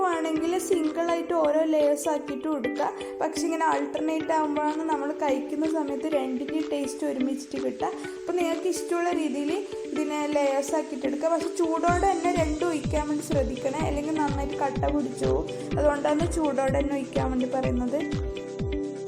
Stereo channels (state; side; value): identical; both; correlation 1.00